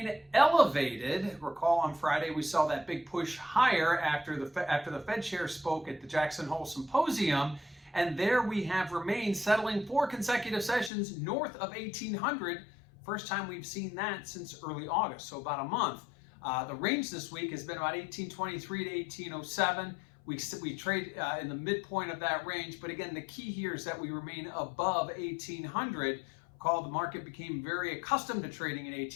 elevated. Recall on Friday we saw that big push higher after the Fed chair spoke at the Jackson Hole Symposium, and there we have remained settling 4 consecutive sessions north of 1800. First time we've seen that since early August, so about a month. The range this week has been about 1823 to 1807. We trade in the midpoint of that range, but again, the key here is that we remain above 1800. Recall, the market became very accustomed to trading in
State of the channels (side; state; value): right; drops out; at 10.9 s